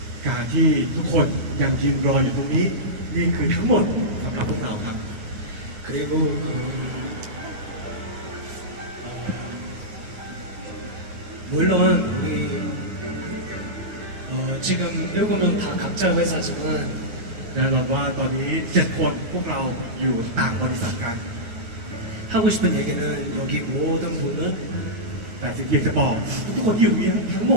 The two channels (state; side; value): late; left; 9.4 ms